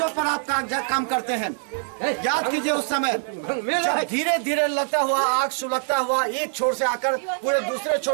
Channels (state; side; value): silent; left; 63 dB below the other